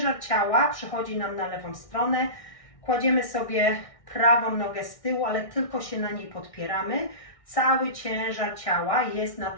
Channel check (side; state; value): right; late; 1.6 ms